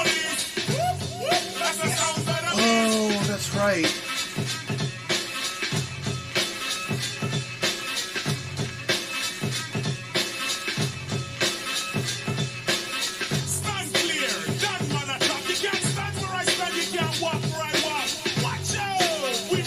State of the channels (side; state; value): both; identical; correlation 1.00